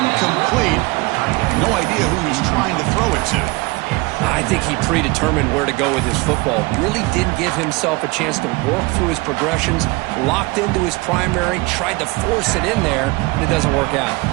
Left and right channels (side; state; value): left; quieter; 24.1 dB